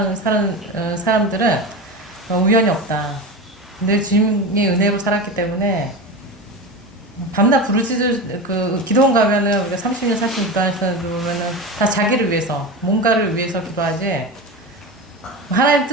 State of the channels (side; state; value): both; normal; correlation 0.24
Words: 사람들은 우연이 없다. 늘 주님의 은혜로 살았기 때문에 밤낮 부르짖을 그 기도원 가면은 우리가 30년 40년 기도하는 사람들 보면은 다 자기를 위해서 뭔가를 위해서 기도하지 하나님